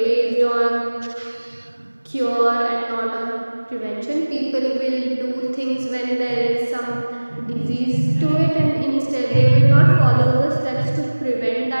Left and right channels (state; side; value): inverted; both; correlation -1.00